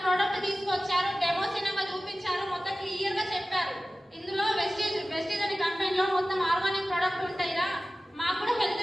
ప్రోడక్ట్ తీసుకొచ్చారు, డెమో సినిమా చూపించారు, మొత్తం క్లియర్ గా చెప్పారు. ఇందులో వెస్టీజ్ అనే కంపెనీలో మొత్తం ఆర్గానిక్ ప్రోడక్ట్ ఉంటాయిరా, మాకు కూడా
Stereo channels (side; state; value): both; normal; correlation 0.96